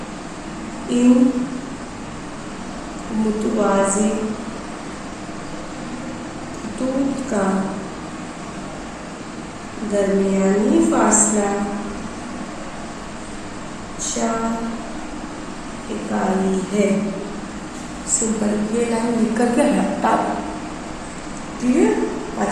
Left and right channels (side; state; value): both; identical; correlation 1.00